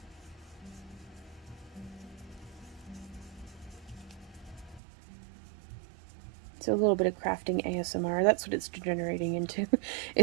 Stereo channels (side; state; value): left; drops out; at 4.8 s